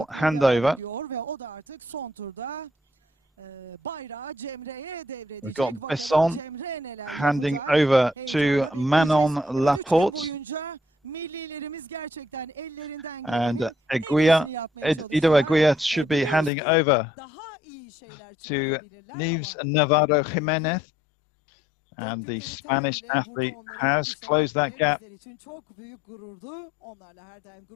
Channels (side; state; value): right; drops out; at 16.5 s